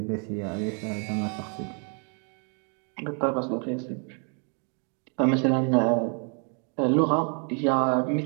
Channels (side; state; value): left; quieter; 40.0 dB